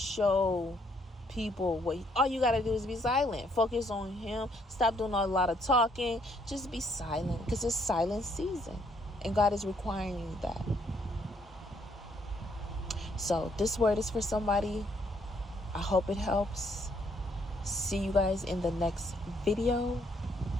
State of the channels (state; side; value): normal; both; correlation 0.69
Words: people all you got to do is be silent. Focus on Him. Stop doing a lot of talking. Just be silent, because it's silent season and God is requiring that. So this word is for somebody. I hope it helps. See you guys in the next video,